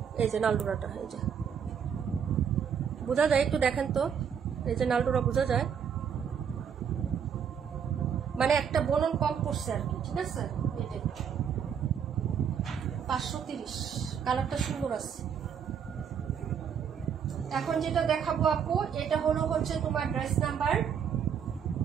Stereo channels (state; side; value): quieter; left; 7.6 dB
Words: এই যে নালডোরাটা, এই যে বোঝা যায়, একটু দেখেন তো। এই যে নালডোরা বোঝা যায়, মানে একটা বলন কম পড়ছে আর কি, ঠিক আছে। এটা 530, কালারটা সুন্দর আছে। এখন যেটা দেখাবো আপু, এটা হলো হচ্ছে তোমার ড্রেস নাম্বার